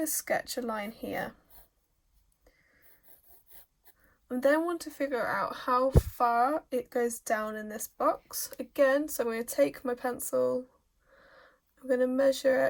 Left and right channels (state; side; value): identical; both; correlation 1.00